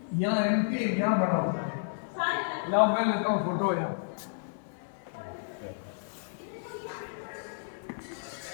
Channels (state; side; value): silent; right; 57 dB below the other